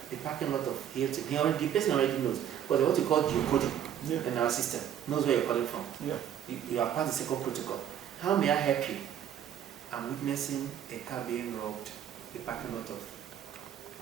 the parking lot of Hilton. The person already knows. Because what you call geocoding in our system knows where you're calling from. Yeah. You have passed the second protocol. How may I help you? I'm witnessing a car being robbed, the parking lot of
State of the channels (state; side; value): quieter; left; 9.9 dB